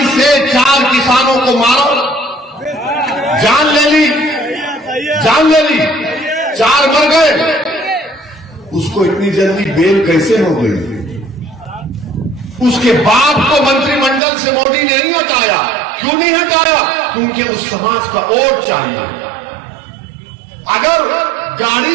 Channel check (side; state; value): left; drops out; at 14.2 s